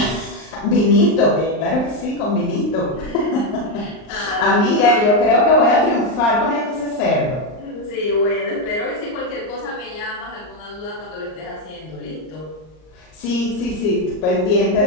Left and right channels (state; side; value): late; right; 39 ms